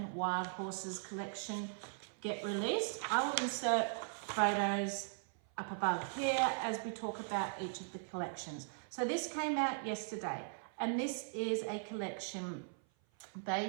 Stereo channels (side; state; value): left; silent; 52 dB below the other